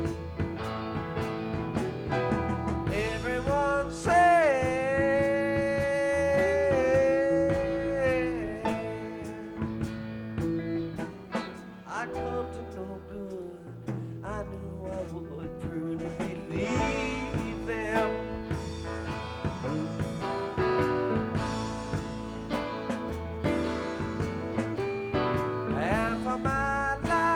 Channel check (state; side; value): identical; both; correlation 1.00